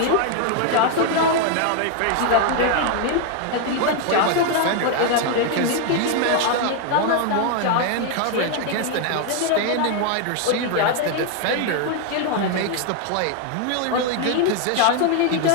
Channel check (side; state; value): both; different; correlation 0.00